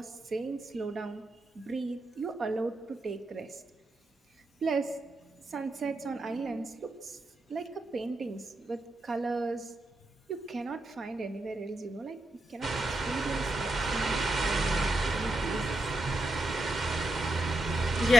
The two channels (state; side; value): normal; both; correlation 0.84